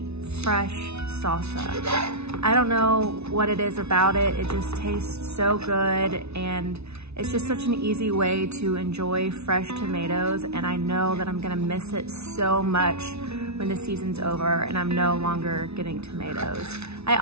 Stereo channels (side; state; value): left; late; 0.80 ms